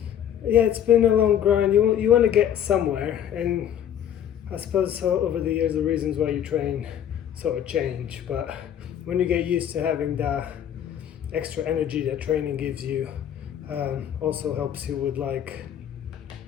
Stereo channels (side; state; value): right; quieter; 9.8 dB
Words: it's been a long grind. You want to get somewhere, and I suppose so over the years the reasons why you train sort of change, but when you get used to having that extra energy that training gives you, also helps you